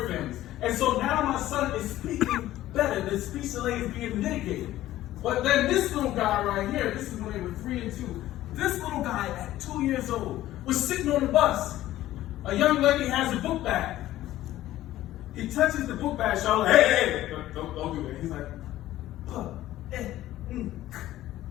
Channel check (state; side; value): quieter; right; 14.6 dB